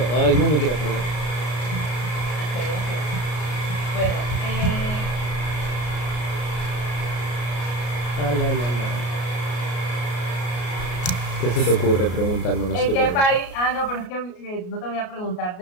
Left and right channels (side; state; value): right; late; 33 ms